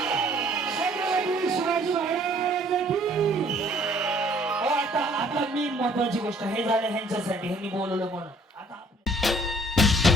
महत्वाची गोष्ट हे झालं ह्यांच्यासाठी ह्यांनी बोलवलं म्हणून आता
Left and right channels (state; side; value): normal; both; correlation 0.58